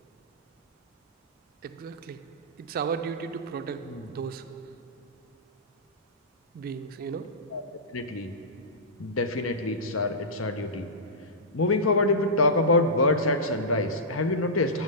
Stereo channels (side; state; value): both; normal; correlation -0.16